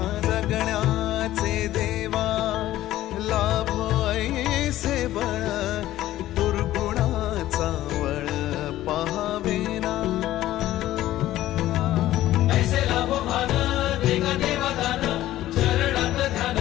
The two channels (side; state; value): right; quieter; 14.4 dB